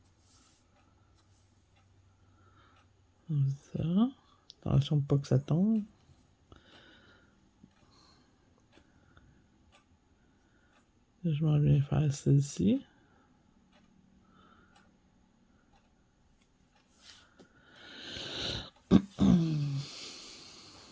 Comme ça. Attention pas que ça tombe. Je m'en viens faire celle-ci.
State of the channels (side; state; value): both; identical; correlation 1.00